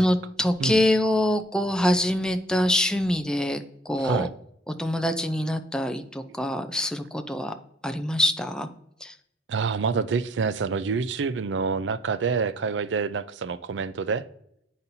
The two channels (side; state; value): both; normal; correlation 0.60